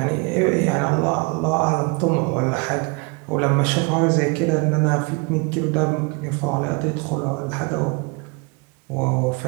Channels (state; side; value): quieter; left; 30.4 dB